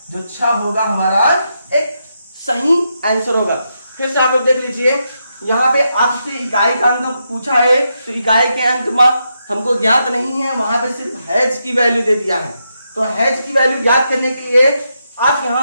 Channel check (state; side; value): inverted; both; correlation -0.83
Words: जो 6 होगा हमारा एक सही आंसर होगा। फिर से आप लोग देख लीजिए, यहाँ पे आपसे इकाई का अंक पूछा है, तो इकाई के अंक में हमको ज्ञात नहीं है, वहां पे सिर्फ हैज की वैल्यू दे दिया है। तो हैज की वैल्यू ज्ञात करने के लिए आप